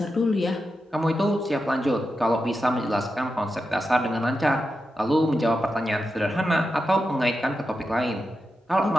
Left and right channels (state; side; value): normal; both; correlation 0.89